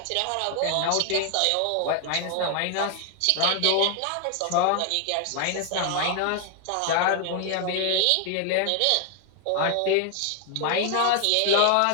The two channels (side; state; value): both; different; correlation 0.00